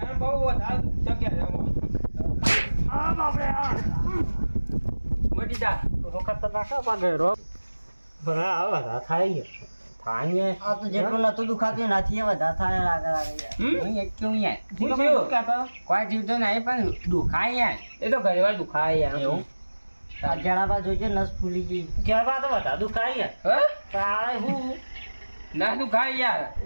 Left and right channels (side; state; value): both; inverted; correlation -1.00